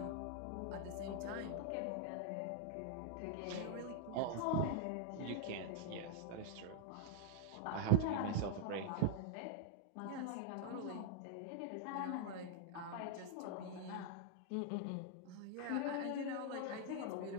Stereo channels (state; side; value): different; both; correlation -0.01